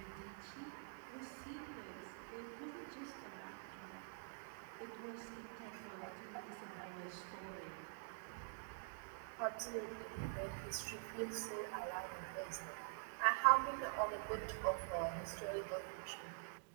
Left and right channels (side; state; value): left; silent; digital silence